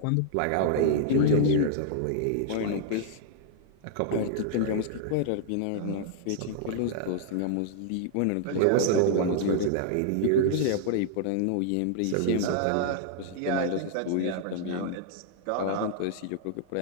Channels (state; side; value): different; both; correlation -0.01